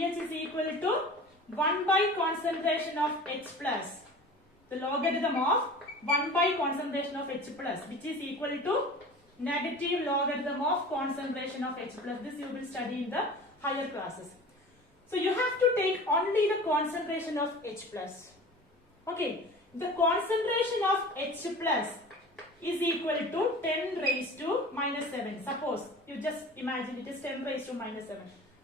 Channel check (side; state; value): both; normal; correlation 0.39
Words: is equal to 1 by concentration of H+. The logarithm of 1 by concentration of H+, which is equal to negative logarithm of concentration of H+. This you will study in the higher classes. So you have to take only the concentration of H+. Okay, the concentration of H+ is equal to 10 raised to minus 7. Suppose you just imagine it is 10 raised to minus 7.